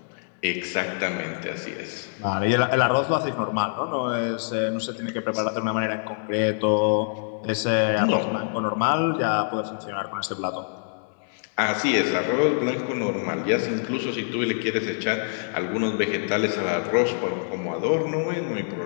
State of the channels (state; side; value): silent; right; digital silence